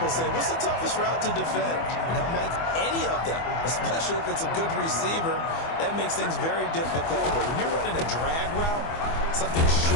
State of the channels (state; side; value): late; right; 24 ms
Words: say, what's the toughest route to defend? And I'm like, any of them, especially if it's a good receiver, that makes things very difficult. But when you're running a drag route, something